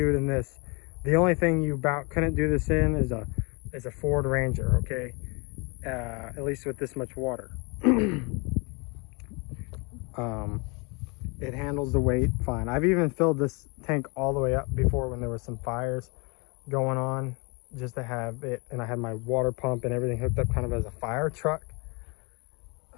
it in this, the only thing you about couldn't do this in is a Ford Ranger. Okay, at least with this much water. It handles the weight fine. I've even filled this tank all the way up before when there was some fires going on, just to have it, and I had my water pump and everything hooked up kind of as a fire truck.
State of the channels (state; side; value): quieter; right; 31.0 dB